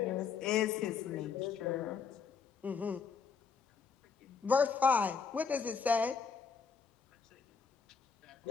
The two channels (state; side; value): quieter; right; 5.8 dB